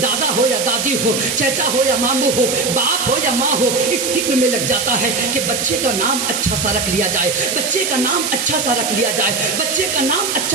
دادا ہو یا دادی ہو، چچا ہو یا ماموں ہو، باپ ہو یا ماں ہو، اس فکر میں لگ جاتا ہے کہ بچے کا نام اچھا سا رکھ لیا جائے، بچے کا نام اچھا سا رکھ لیا جائے، بچے کا نام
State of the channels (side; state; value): right; noise; hiss, 1 dB below the sound